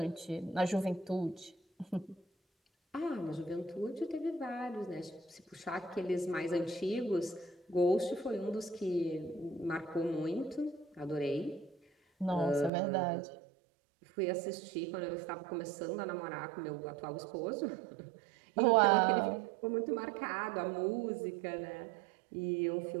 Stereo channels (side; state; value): left; drops out; at 12.7 s